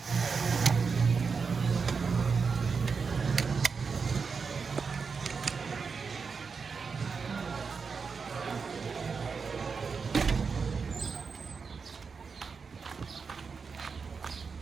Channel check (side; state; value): left; quieter; 5.3 dB